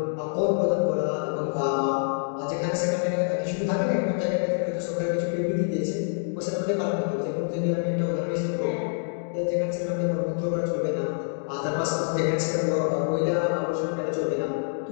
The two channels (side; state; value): right; silent; digital silence